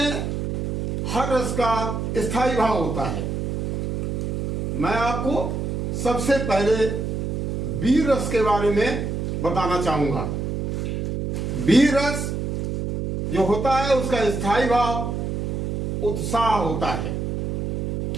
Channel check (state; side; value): noise; right; hum, 2 dB below the sound